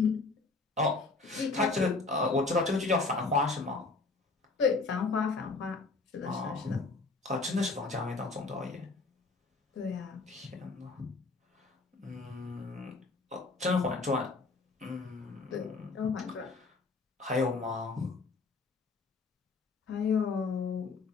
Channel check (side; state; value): right; quieter; 3.8 dB